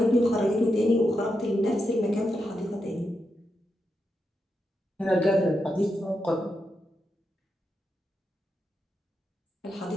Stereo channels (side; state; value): both; normal; correlation 0.85